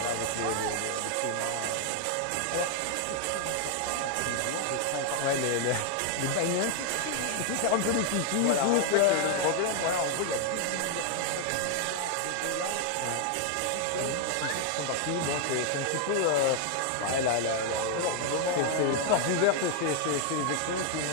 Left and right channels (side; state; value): both; different; correlation 0.00